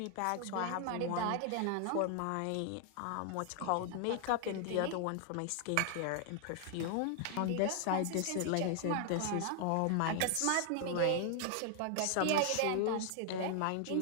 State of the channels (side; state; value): both; different; correlation 0.00